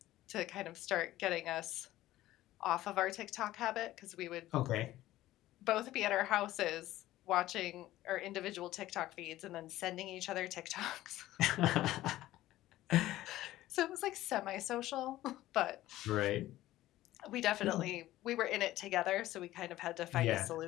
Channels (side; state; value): right; quieter; 15.4 dB